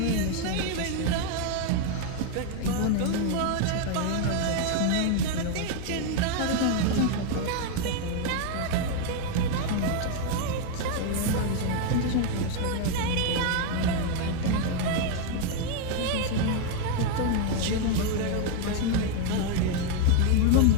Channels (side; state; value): both; different; correlation 0.01